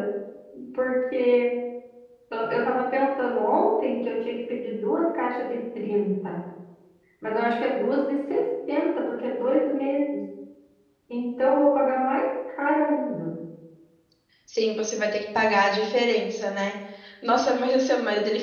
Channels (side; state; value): both; identical; correlation 1.00